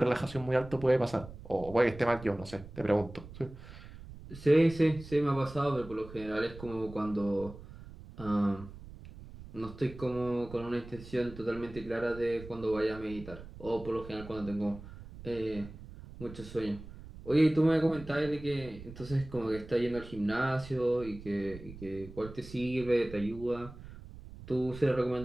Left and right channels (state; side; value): noise; right; rumble, 15 dB below the sound